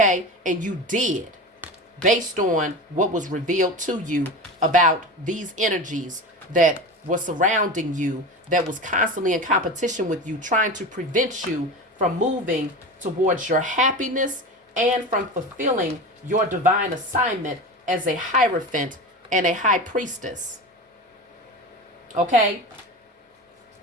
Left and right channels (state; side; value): normal; both; correlation 0.28